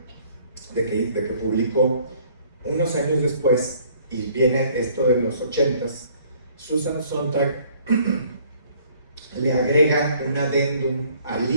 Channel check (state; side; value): inverted; both; correlation -0.58